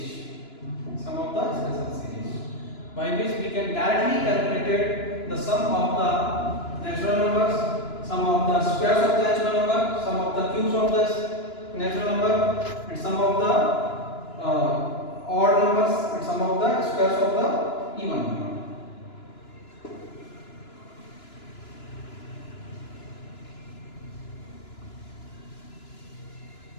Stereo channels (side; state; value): right; late; 2.9 ms